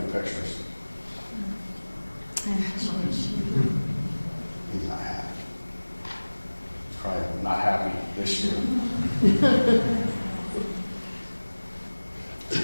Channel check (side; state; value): both; inverted; correlation -1.00